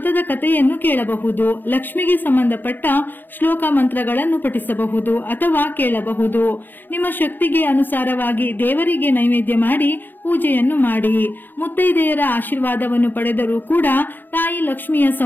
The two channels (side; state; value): right; late; 0.092 ms